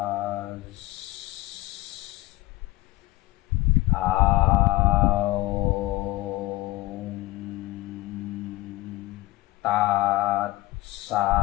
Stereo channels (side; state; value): right; quieter; 19.4 dB